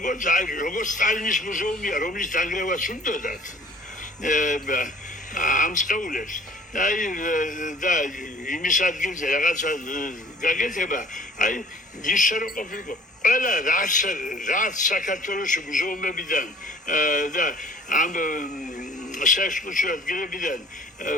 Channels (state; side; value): normal; both; correlation 0.51